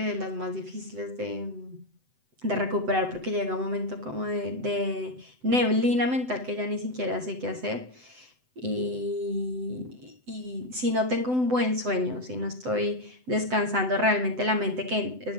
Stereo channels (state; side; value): late; left; 7.9 ms